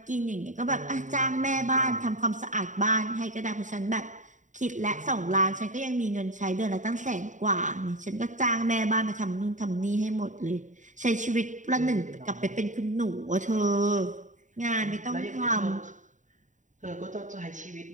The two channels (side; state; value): left; late; 0.36 ms